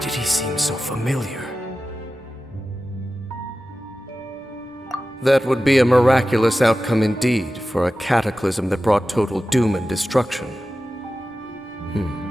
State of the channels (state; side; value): normal; both; correlation 0.94